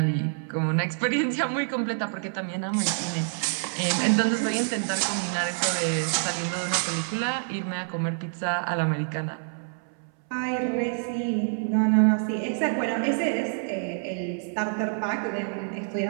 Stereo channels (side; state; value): left; silent; 60 dB below the other